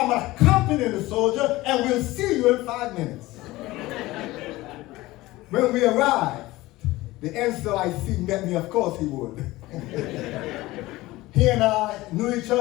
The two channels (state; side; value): quieter; right; 18.7 dB